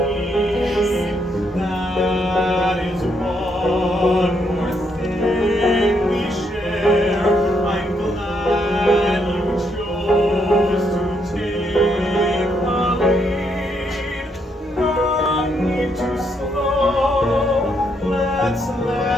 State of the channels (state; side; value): normal; both; correlation 0.76